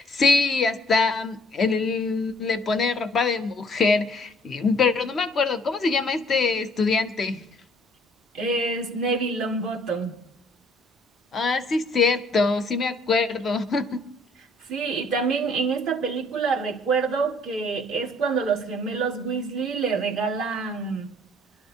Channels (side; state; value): both; normal; correlation 0.60